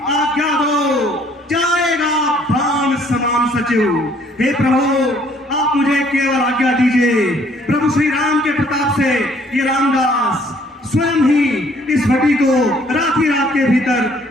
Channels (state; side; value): normal; both; correlation 0.61